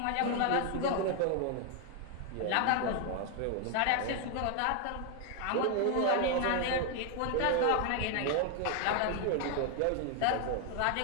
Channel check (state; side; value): different; both; correlation 0.00